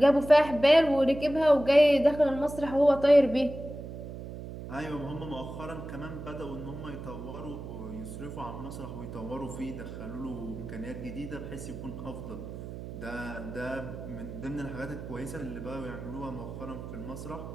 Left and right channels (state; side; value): noise; right; hum, 10 dB below the sound